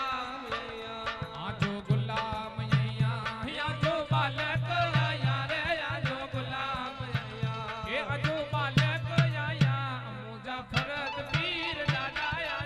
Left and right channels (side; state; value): both; identical; correlation 1.00